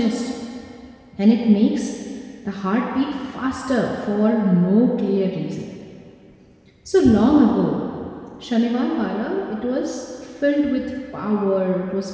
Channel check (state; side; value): identical; both; correlation 1.00